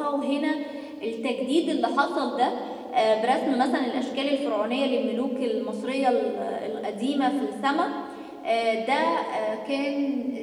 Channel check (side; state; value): both; identical; correlation 1.00